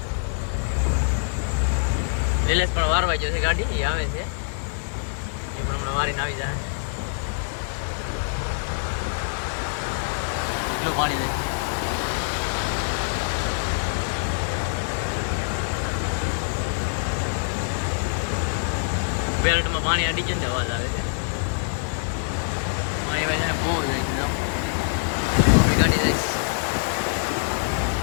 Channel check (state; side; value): silent; right; 59 dB below the other